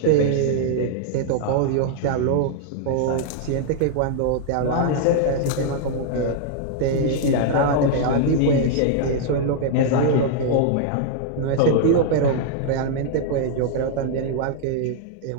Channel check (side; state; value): both; different; correlation -0.01